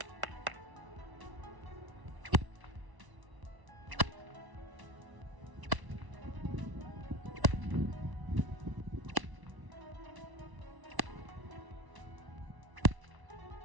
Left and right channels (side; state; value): left; late; 1.0 ms